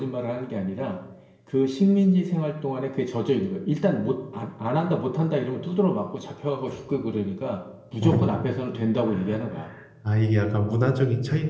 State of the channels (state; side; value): identical; both; correlation 1.00